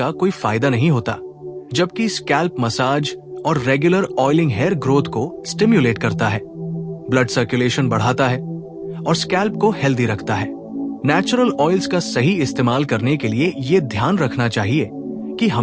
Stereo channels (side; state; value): both; identical; correlation 1.00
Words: कोई फायदा नहीं होता, जबकि स्कैल्प मसाज और रेगुलर ऑयलिंग हेयर ग्रोथ को स्टिम्युलेट करता है, ब्लड सर्कुलेशन बढ़ाता है और स्कैल्प को हेल्दी रखता है। नेचुरल ऑयल्स का सही इस्तेमाल करने के लिए ये ध्यान रखना चाहिए कि